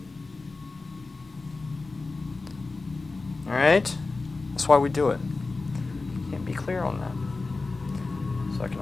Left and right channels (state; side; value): quieter; right; 3.7 dB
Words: All right? That's why we do it. Can't be clear on that. So I can